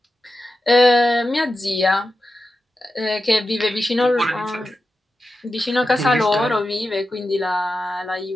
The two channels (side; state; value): both; normal; correlation 0.91